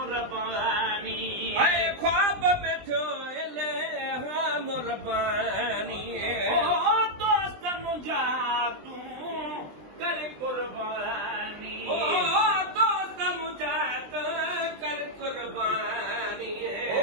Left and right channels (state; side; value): late; left; 20 ms